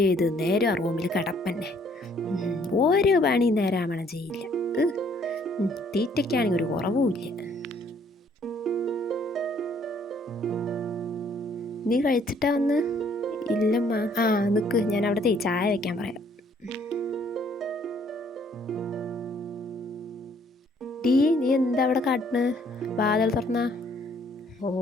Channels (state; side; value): normal; both; correlation 0.63